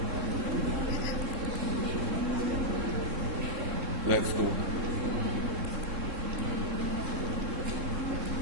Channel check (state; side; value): late; left; 3.6 ms